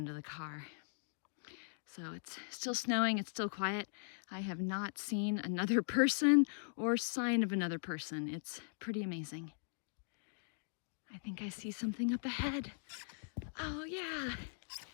to the car. So it's still snowing, it's still quiet. I have not seen another person or sign of another person. It's pretty amazing. I think I see something up ahead. Oh yeah,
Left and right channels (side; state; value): right; silent; digital silence